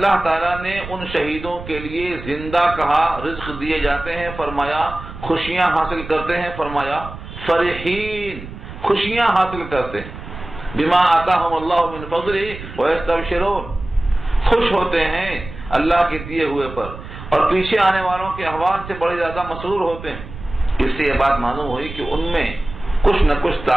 تعالیٰ نے ان شہیدوں کے لیے زندہ کہا، رزق دیے جاتے ہیں فرمایا، خوشیاں حاصل کرتے ہیں فرمایا، فرحین خوشیاں حاصل کرتے ہیں، بما آتاہم اللہ من فضلہ ویستبشرون خوش ہوتے ہیں اللہ کے دیے ہوئے پر، اور پیچھے آنے والوں کے احوال سے بڑے زیادہ مسرور ہوتے ہیں۔ اس سے یہ بات معلوم ہوئی کہ ان میں کچھ نہ کچھ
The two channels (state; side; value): noise; right; rumble, 12 dB below the sound